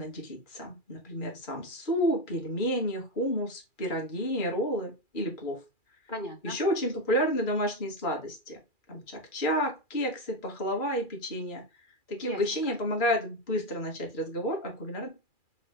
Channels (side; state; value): right; late; 2.4 ms